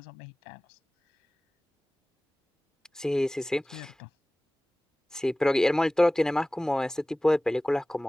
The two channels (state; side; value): normal; both; correlation 0.98